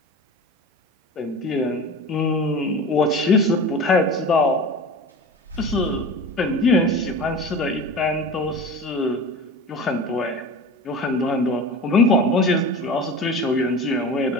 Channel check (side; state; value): both; normal; correlation 0.34